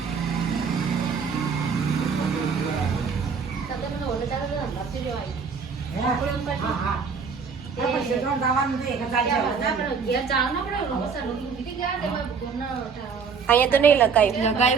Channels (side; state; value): left; quieter; 5.8 dB